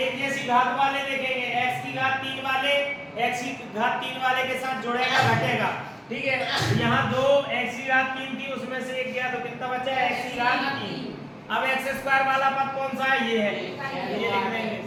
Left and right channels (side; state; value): both; identical; correlation 1.00